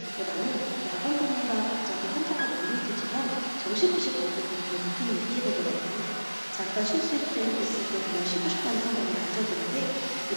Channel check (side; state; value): both; inverted; correlation -1.00